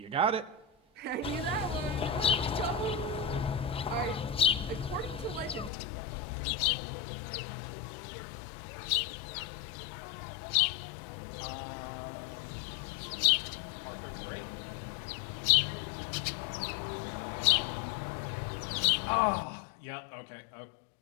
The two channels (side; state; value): right; drops out; at 5.7 s